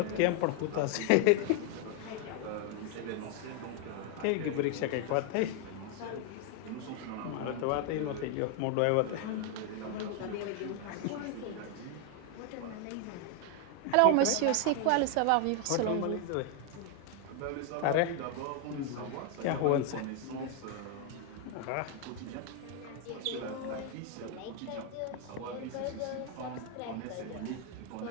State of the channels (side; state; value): both; different; correlation 0.01